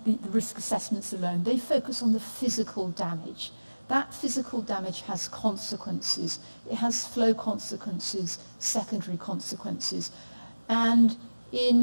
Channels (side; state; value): both; inverted; correlation -1.00